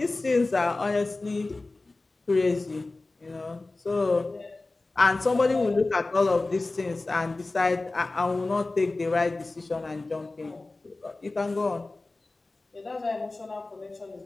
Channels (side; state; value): right; quieter; 3.2 dB